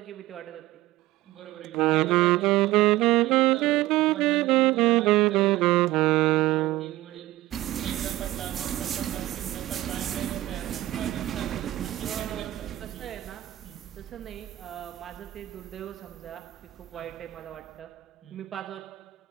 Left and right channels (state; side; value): quieter; left; 16.5 dB